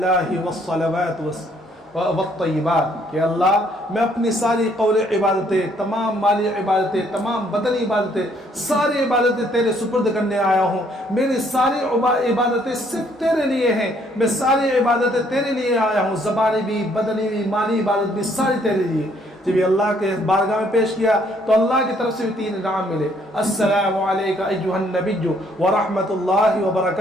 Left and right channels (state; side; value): normal; both; correlation 0.66